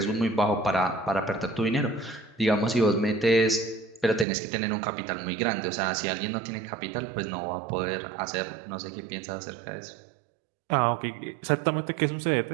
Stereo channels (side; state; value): left; drops out; at 4.2 s